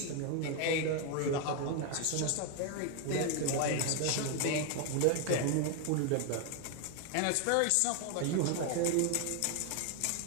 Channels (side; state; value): both; different; correlation 0.01